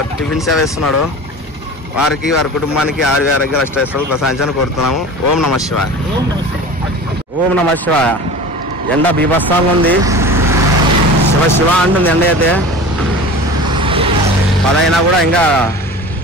టిఫిన్ సేవ ఇస్తున్నాడు. వారికి, వారి కుటుంబానికి ఆరోగ్య అష్టైశ్వర్యాలు ప్రసాదించాలని కోరుతున్నాము. ఓం నమ శివాయ. ఓం నమ శివాయ. ఎండ బీభత్సంగా ఉంది. శివ అంటుంది ఎండ అయితే. 10 అయినా కూడా ఇంకా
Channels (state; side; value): normal; both; correlation 0.36